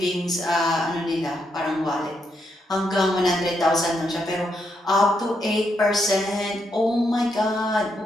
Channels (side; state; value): both; normal; correlation 0.79